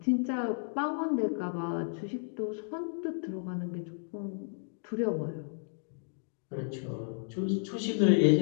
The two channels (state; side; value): silent; right; digital silence